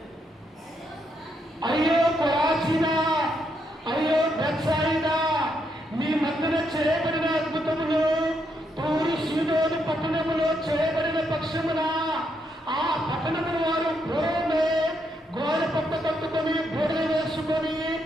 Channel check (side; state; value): both; normal; correlation 0.78